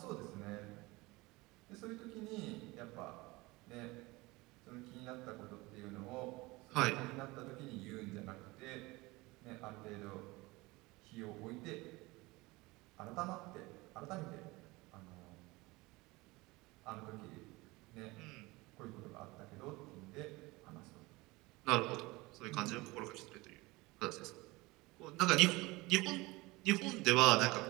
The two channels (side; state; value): left; quieter; 22.4 dB